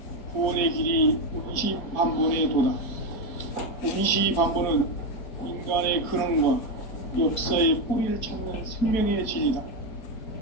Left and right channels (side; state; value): right; late; 4.5 ms